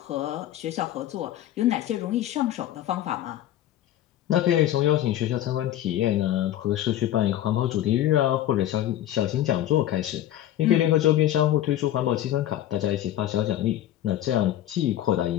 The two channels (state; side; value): quieter; right; 12.4 dB